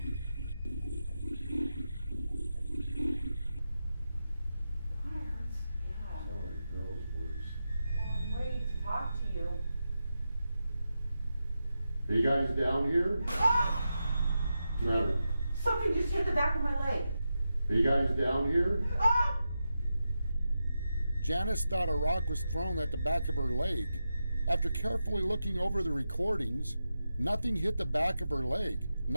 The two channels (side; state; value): both; inverted; correlation -0.89